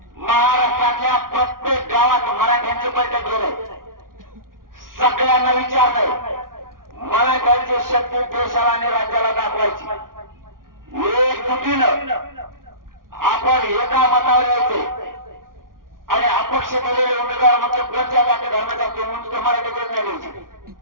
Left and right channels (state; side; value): late; left; 0.91 ms